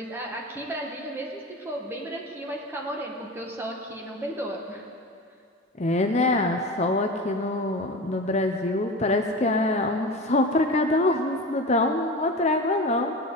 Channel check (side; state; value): both; normal; correlation 0.30